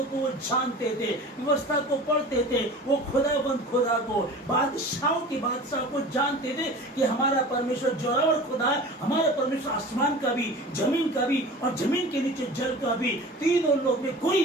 को वो जानते थे, व्यवस्था को पढ़ते थे। वो खुदा को, बादशाह को जानते थे कि हमारा परमेश्वर जोरावर खुदा है। हमारा परमेश्वर आसमान का भी, जमीन का भी और जमीन के नीचे जल का भी, तीनों लोग में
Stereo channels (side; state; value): both; normal; correlation 0.38